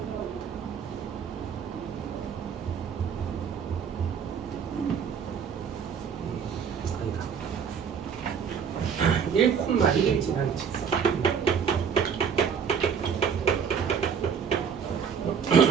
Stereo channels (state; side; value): quieter; left; 7.1 dB